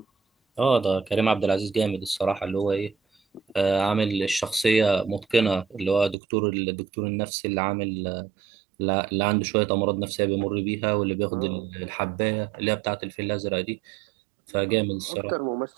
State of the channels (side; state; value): left; drops out; at 6.2 s